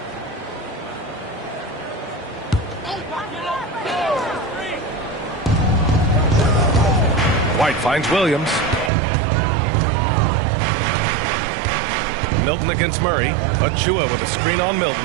White finds Williams. Milton against Murray. Achua with a screen on Milton.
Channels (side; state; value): left; drops out; at 8.9 s